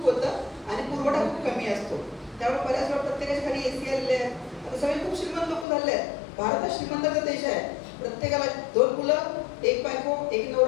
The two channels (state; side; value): drops out; right; at 5.7 s